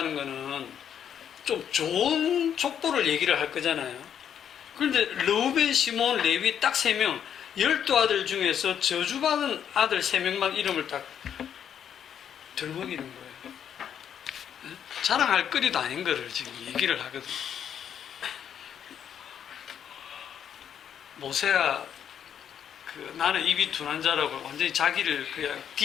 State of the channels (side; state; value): right; quieter; 8.8 dB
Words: 거는 좀 좋은 족보를 얘기를 할 거잖아요. 그런데 르우벤, 시몬, 레위 딱 3명 12아들 중에서 저주받은 아들 3명만 이름을 딱 들먹이는 거예요. 자랑할 거리도 아닌 거를 지금 얘기를 하거든요. 모세가 나는 입이 둔한 자라고 완전히 자기를 그냥